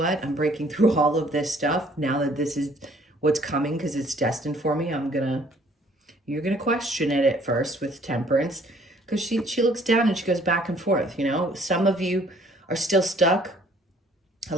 I'm breaking through all of this stuff now that this is what's coming because it's destined for me. You're gonna question it at first with Temperance, because she looks down and she goes back and forth. You know, some of you are still stuck a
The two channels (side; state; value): both; normal; correlation 0.60